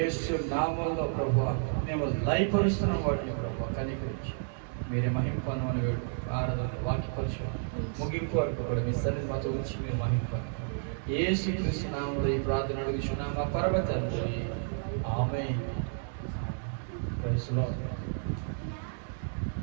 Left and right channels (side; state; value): left; silent; digital silence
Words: నామంలో ప్రభా మేము లయపరుస్తున్నాం వాటిని ప్రభా. కనికరించి మీరే మహిమ పొందమని వేడుకుంటున్నాం. ఆరాధన వాక్యపరిచయం ముగింపు వరకు కూడా మీ సన్నిధి మాతో ఉంచి మీరు మహిమ యేసు క్రీస్తు నామంలో ఈ ప్రార్థన అడుగుచున్నాం మా పరమ తండ్రి. ఆమేన్. Praise the lord.